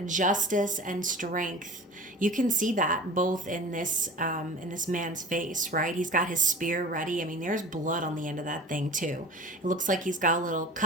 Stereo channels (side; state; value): both; normal; correlation 0.37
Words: Justice and Strength, you can see that both in this man's face, right? He's got his spear ready. I mean, there's blood on the end of that thing too. It looks like he's got a little